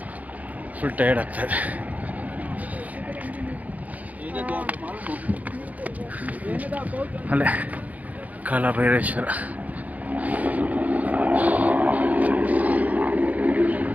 ಫುಲ್ ಟಯರ್ಡ್ ಆಗ್ತಾಯಿದೆ. ಅಲ್ಲೇ ಕಾಲಭೈರೇಶ್ವರ.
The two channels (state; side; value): late; left; 0.075 ms